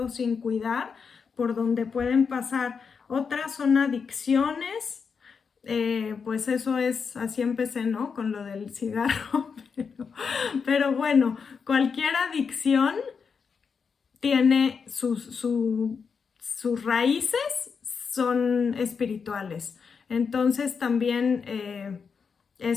sin cuidar por donde pueden pasar. Otras son adicciones, pues eso es, así empecé, ¿no? Con lo del cigarro, pero bueno, cualquier adicción tiene sus raíces, son espirituales. Entonces también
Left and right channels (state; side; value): quieter; right; 5.8 dB